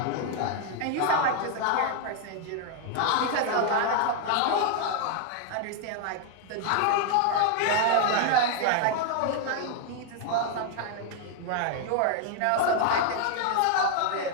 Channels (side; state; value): both; different; correlation 0.00